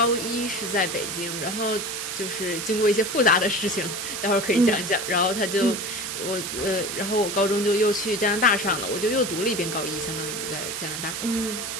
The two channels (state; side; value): noise; right; hiss, 4 dB below the sound